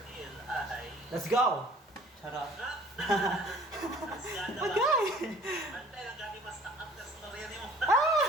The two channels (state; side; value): normal; both; correlation 0.52